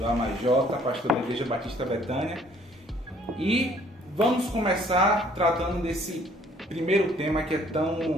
AMAJ, pastor da Igreja Batista Betânia, e vamos começar tratando desse primeiro tema que é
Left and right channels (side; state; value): both; normal; correlation 0.60